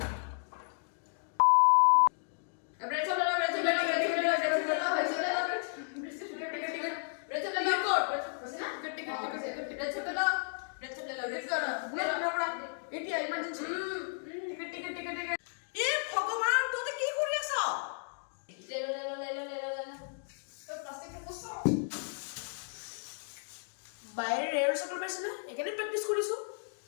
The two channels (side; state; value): right; silent; digital silence